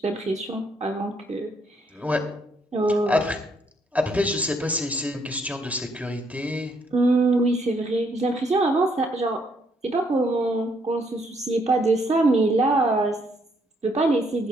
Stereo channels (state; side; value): normal; both; correlation 0.71